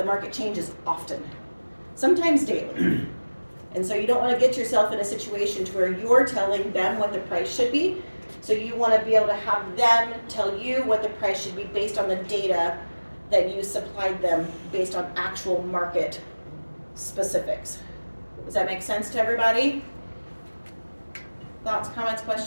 market changes often, sometimes daily. And so you don't want to get yourself in a situation to where you're telling them what the price should be. So you want to be able to have them tell you what the price should be based on the data that you supplied them based on actual market specifics. Does that make sense to everybody? Thoughts, comments,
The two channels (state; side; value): inverted; both; correlation -1.00